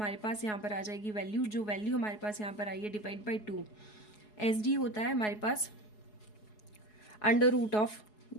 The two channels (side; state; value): right; late; 4.7 ms